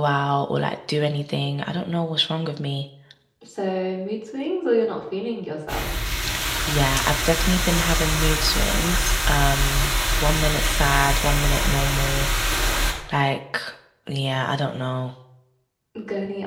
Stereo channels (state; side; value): identical; both; correlation 1.00